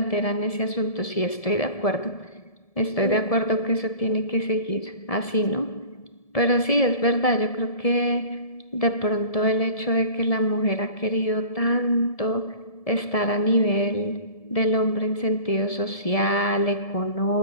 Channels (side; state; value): right; late; 1.7 ms